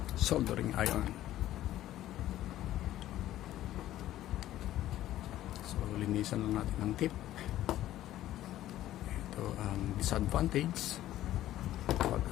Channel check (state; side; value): quieter; right; 13.7 dB